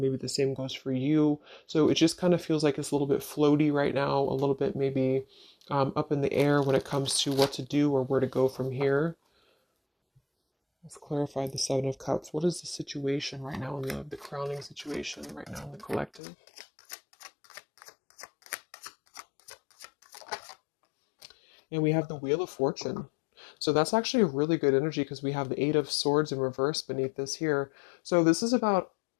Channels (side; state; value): right; drops out; at 16.2 s